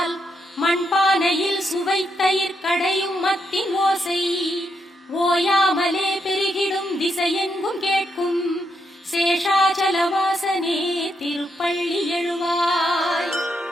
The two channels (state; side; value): normal; both; correlation 0.80